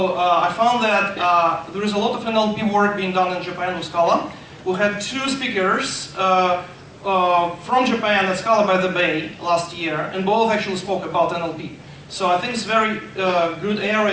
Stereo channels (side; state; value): both; identical; correlation 1.00